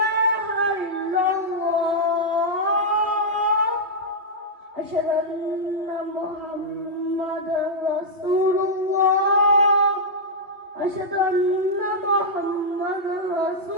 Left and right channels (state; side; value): late; left; 2.8 ms